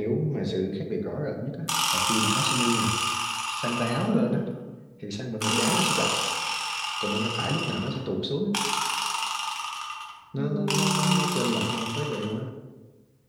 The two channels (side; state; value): both; identical; correlation 1.00